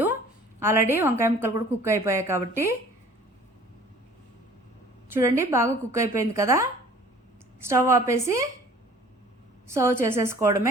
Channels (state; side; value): normal; both; correlation 0.50